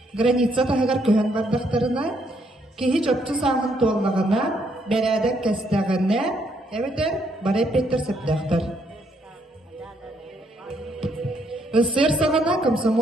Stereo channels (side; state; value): both; normal; correlation 0.72